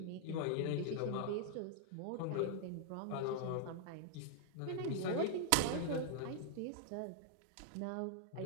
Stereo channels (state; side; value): different; both; correlation -0.01